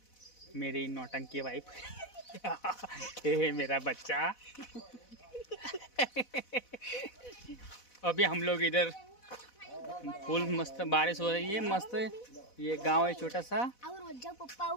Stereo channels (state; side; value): late; right; 4.1 ms